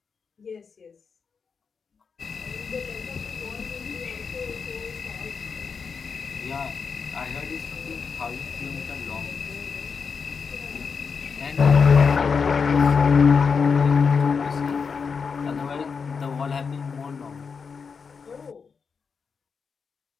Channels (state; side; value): quieter; right; 5.6 dB